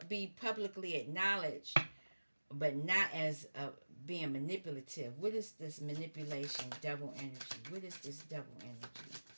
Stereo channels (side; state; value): both; inverted; correlation -1.00